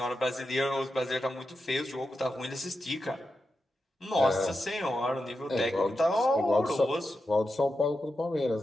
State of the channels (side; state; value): both; normal; correlation 0.89